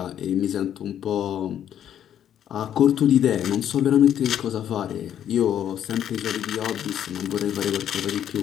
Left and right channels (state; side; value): quieter; right; 10.1 dB